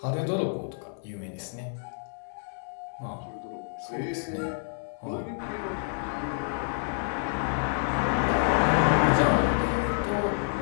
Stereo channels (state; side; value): silent; right; digital silence